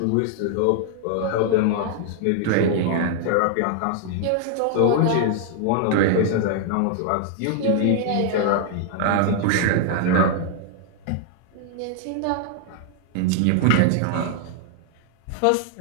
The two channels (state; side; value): different; both; correlation 0.00